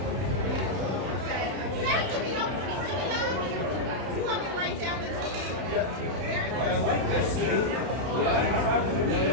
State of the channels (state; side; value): late; left; 31 ms